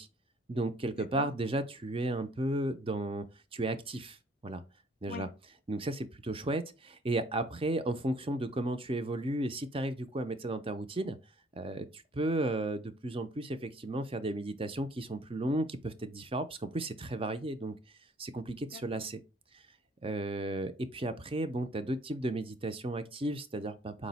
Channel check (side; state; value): both; normal; correlation 0.59